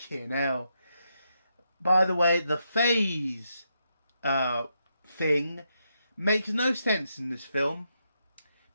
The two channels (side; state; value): both; inverted; correlation -0.82